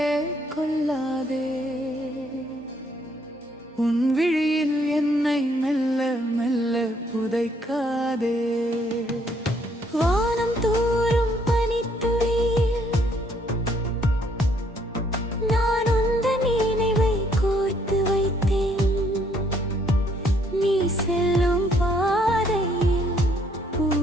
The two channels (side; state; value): both; normal; correlation 0.67